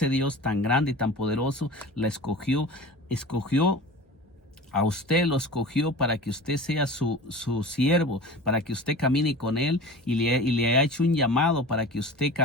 Dios tan grande y tan poderoso la escogió a usted, lo escogió para que usted sea su siervo, para que usted camine con él, y le ha hecho un llamado para que usted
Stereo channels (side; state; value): both; normal; correlation 0.36